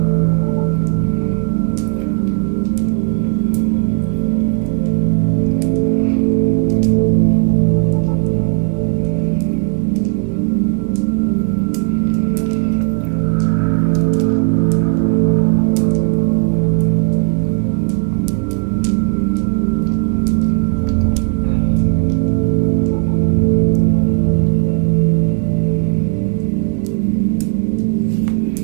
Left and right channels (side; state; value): left; quieter; 39.9 dB